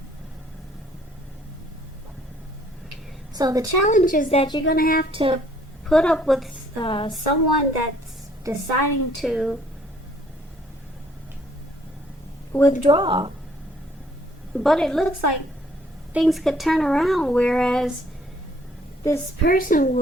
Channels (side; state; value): both; normal; correlation 0.62